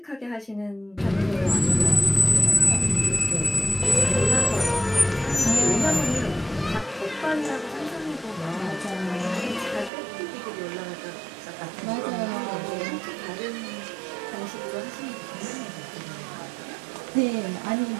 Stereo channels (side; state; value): left; drops out; at 9.9 s